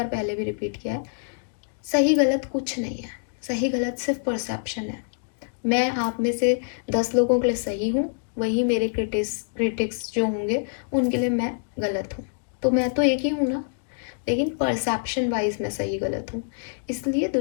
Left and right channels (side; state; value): right; silent; digital silence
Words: पहले भी रिपीट किया है, सही गलत कुछ नहीं है। सही गलत सिर्फ परसेप्शन है। मैं आप में से 10 लोगों के लिए सही हूँ, वही मेरे क्रिटिक्स जो होंगे उनके लिए मैं गलत हूँ। तो मैं तो एक ही हूँ ना, लेकिन परसेप्शन वाइज मैं सही गलत हूँ। इसलिए